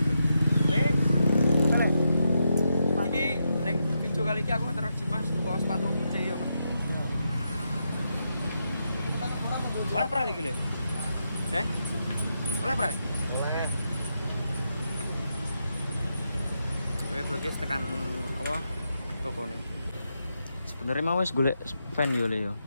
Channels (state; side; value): inverted; both; correlation -0.84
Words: Iki neng video kali ini aku interaksi Mas tuku sepatu putih ya, Pak. Oleh pernah lagi le? Oleh pernah? Oleh. Oke, tekan apa? Toko nih. Sebenarnya mau wis golek fan yo le yo,